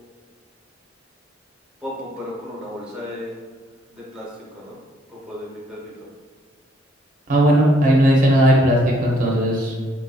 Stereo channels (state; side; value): normal; both; correlation 0.68